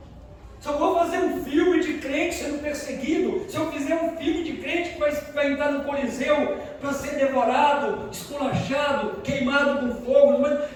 Se eu vou fazer um filme de crente sendo perseguido, se eu fizer um filme de crente que vai entrar no Coliseu para ser devorado, esculachado, queimado com fogo, mas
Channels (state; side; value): identical; both; correlation 1.00